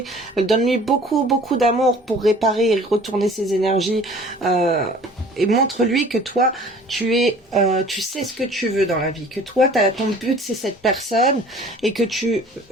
donne-lui beaucoup d'amour pour réparer et retourner ses énergies, et montre-lui que toi tu sais ce que tu veux dans la vie, que toi ton but c'est cette personne et que tu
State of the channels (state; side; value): normal; both; correlation 0.49